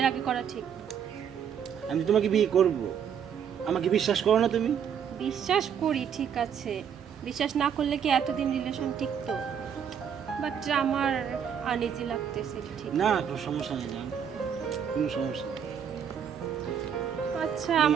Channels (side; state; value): left; quieter; 8.0 dB